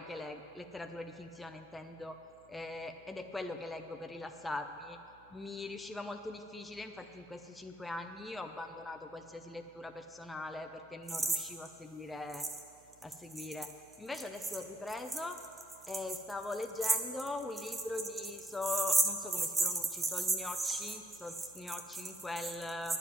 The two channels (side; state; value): right; noise; hum, 27 dB below the sound